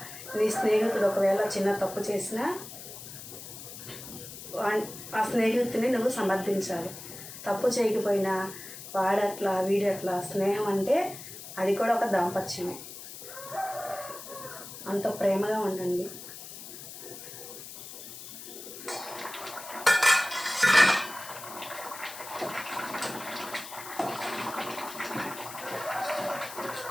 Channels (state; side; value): noise; left; hiss, 12 dB below the sound